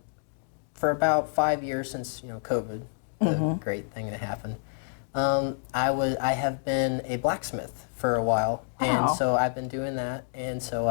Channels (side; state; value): right; silent; digital silence